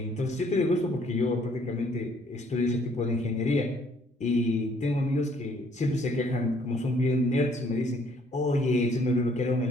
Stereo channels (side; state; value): both; normal; correlation 0.63